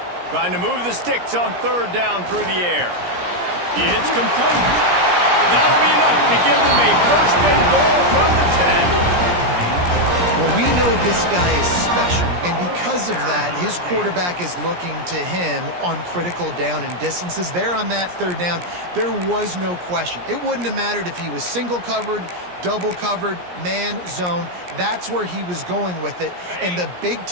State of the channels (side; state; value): left; late; 17 ms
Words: Trying to move the sticks on 3rd down through the air. It's complete. That'll be enough to give them a 1st and goal from the 10. Well, we know this guy is special, and because of that, his quarterback is looking to him on critical down and distances. There on that 3rd down, there was no question. It wouldn't have mattered if he was single covered, double covered, man, zone. That's where he was going with it, and the